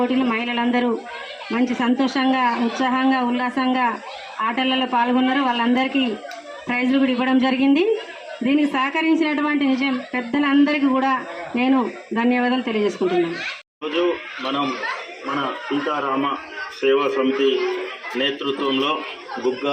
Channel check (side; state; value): both; identical; correlation 1.00